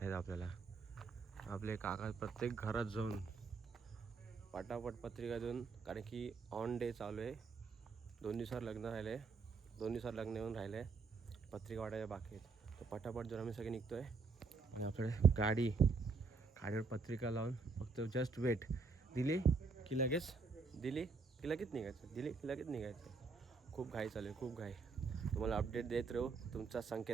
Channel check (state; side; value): quieter; left; 4.6 dB